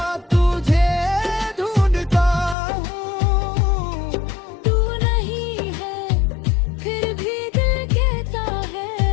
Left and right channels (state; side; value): drops out; right; at 2.6 s